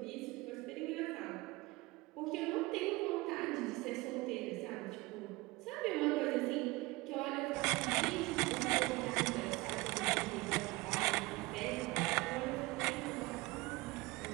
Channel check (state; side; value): quieter; left; 22.0 dB